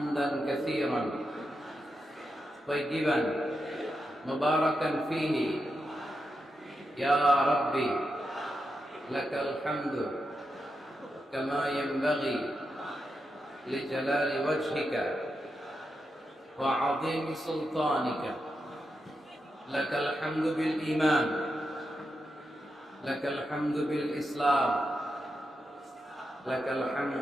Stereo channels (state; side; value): normal; both; correlation 0.87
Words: কাসীরান طيبا مباركا فيه يا ربي لك الحمد كما ينبغي لجلال وجهك وعظيم سلطانك لك الحمد بالإيمان لك الحمد بالإسلام لك